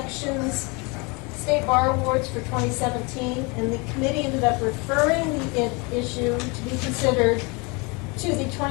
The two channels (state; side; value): quieter; right; 29.0 dB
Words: State Bar Awards for 2017, and the committee ended up referring the issue to be considered to the